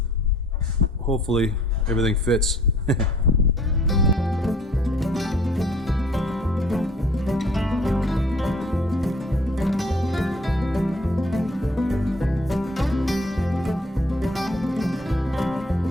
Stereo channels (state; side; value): normal; both; correlation 0.56